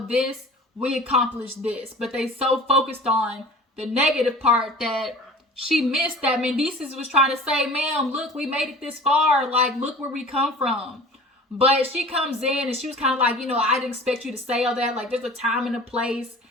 this, we accomplished this. But they so focused on the negative part that she missed that Mendeecees was trying to say, ma'am, look, we made it this far. Like, look where we come from. But she comes in and she was kind of like, you know, I didn't expect you to say all that. Like, there's a time and a place.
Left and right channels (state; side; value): normal; both; correlation 0.42